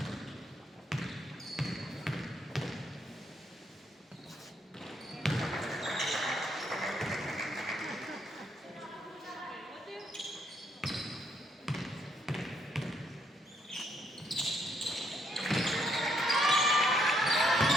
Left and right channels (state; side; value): normal; both; correlation 0.72